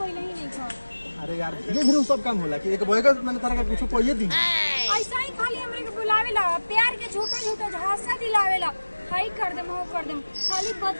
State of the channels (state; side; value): inverted; both; correlation -1.00